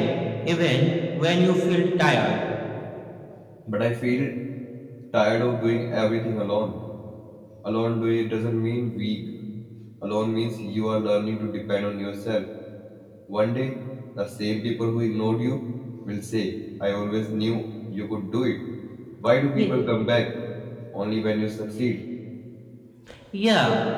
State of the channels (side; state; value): both; identical; correlation 1.00